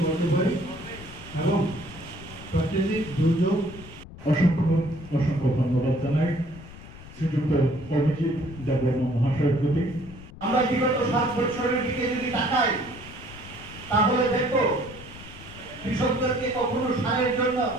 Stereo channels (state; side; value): noise; left; rumble, 17 dB below the sound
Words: করতে পারি এবং প্রাকৃতিক দুর্যোগ। অসংখ্য অসংখ্য ধন্যবাদ জানাই শ্রীযুক্ত অভিজিৎ দেববর্মা মহাশয়ের প্রতি। আমরা বিগত 7 বছরের দিকে যদি তাকাই তাহলে দেখো কৃষকদেরকে কখনো সারের জন্য